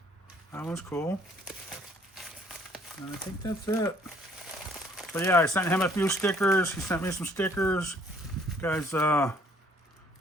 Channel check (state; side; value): normal; both; correlation 0.61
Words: That was cool. And I think that's it. So yeah, I sent him a few stickers. He sent me some stickers. Guys, want